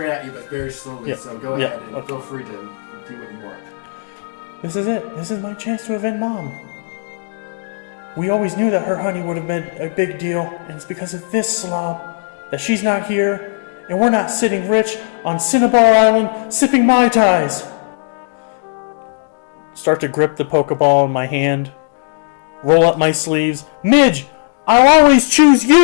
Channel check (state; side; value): silent; right; digital silence